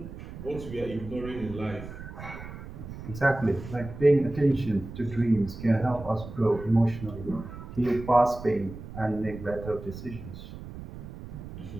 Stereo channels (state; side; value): noise; right; rumble, 12 dB below the sound